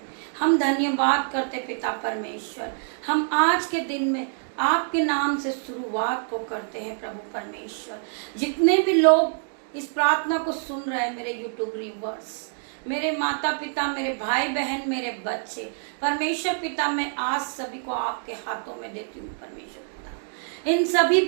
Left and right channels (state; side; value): silent; left; digital silence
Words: हम धन्यवाद करते पिता परमेश्वर। हम आज के दिन में आपके नाम से शुरुआत को करते हैं प्रभु परमेश्वर। जितने भी लोग इस प्रार्थना को सुन रहे हैं, मेरे यूट्यूब व्यूअर्स, मेरे माता पिता, मेरे भाई बहन, मेरे बच्चे, परमेश्वर पिता मैं आज सभी को आपके हाथों में देती हूँ परमेश्वर पिता। इन सभी